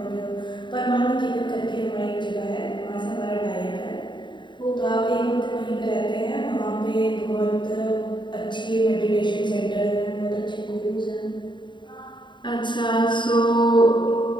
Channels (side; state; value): right; late; 0.23 ms